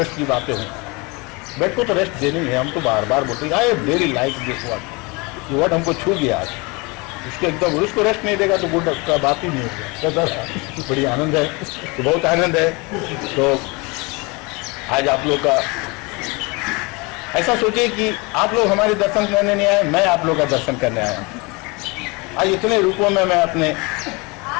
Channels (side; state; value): right; quieter; 27.4 dB